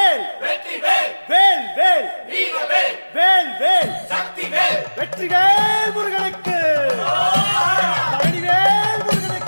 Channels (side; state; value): both; inverted; correlation -1.00